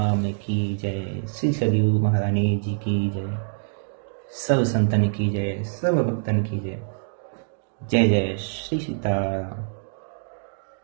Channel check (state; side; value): silent; left; digital silence